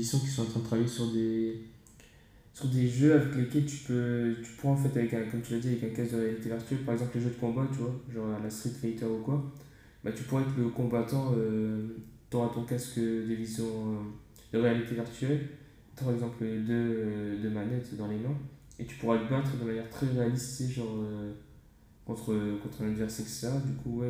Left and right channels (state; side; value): identical; both; correlation 1.00